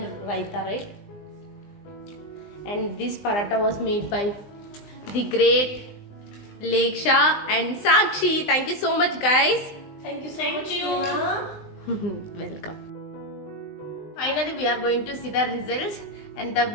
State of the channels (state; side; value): late; right; 20 ms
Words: raita, right? And this paratha was made by the great Leksha and Sakshi. Thank you so much, guys. Thank you so Thank much, you. Seema. Welcome. Finally, we are going to see the results, and the